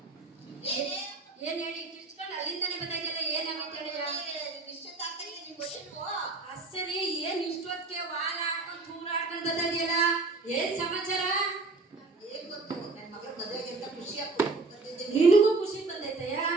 ಏನ್ ಹೇಳಿ ಕಿರ್ಚ್ಕೊಂಡು ಅಲ್ಲಿಂದಾನೆ ಬರ್ತಾಯಿದ್ಯಲ್ಲ, ಏನಾಗೈತೆ ಹೇಳಯ್ಯ? ಸರಿ, ಏನ್ ಇಷ್ಟೊತ್ತಿಗೆ ವಾರ ಆಡ್ಕೊಂಡು ತೂರ ಆಡ್ಕೊಂಡು ಬರ್ತಾಯಿದ್ಯಲ್ಲ, ಏನ್ ಸಮಾಚಾರ? ಏನ್ ಗೊತ್ತು, ನನ್ನ ಮಗಳ ಮದುವೆಗೆ ಅಂತ ಖುಷಿ ಆಗ್ತದೆ. ನಿನಗೂ ಖುಷಿ ಬಂದೈತಯ್ಯ?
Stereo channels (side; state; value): left; quieter; 3.6 dB